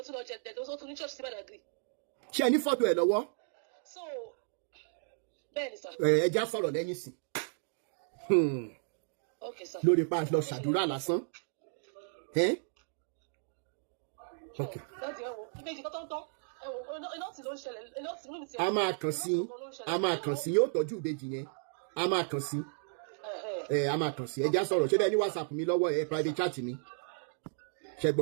tún lọ jẹ dẹ̀dẹ̀ ó tún ní church sí Badagry. Ṣé ẹ ní fọ́tò ẹ lọ́wọ́? So bẹ́ẹ̀ ni sà. Ẹ já sọ̀rọ̀ lẹ́yìn sí. Okay sir. Lórí pa lọ ṣàdúrà lásán. Okay. Láti ẹ̀wọ̀ ìbejì tó tán. A máa kàn sí yóò tọ́jú ìbejì yẹn a máa kàn sí ẹ já sọ̀rọ̀ ṣé bẹ́ẹ̀ ní WhatsApp mi lọ́wọ́ ẹ private chat mi ṣẹ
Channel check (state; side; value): silent; left; digital silence